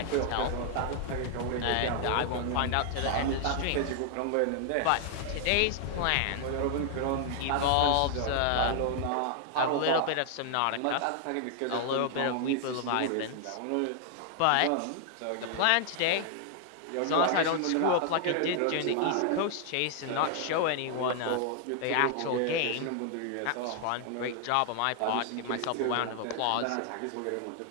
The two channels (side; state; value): both; different; correlation 0.00